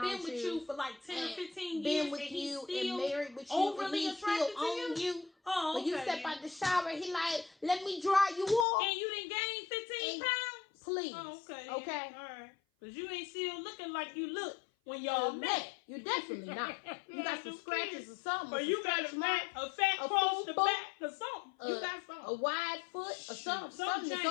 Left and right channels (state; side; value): drops out; right; at 8.7 s